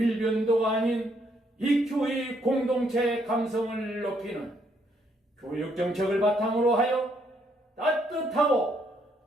아닌 EQ의 공동체 감성을 높이는 교육정책을 바탕으로 하여 따뜻하고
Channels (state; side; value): normal; both; correlation 0.72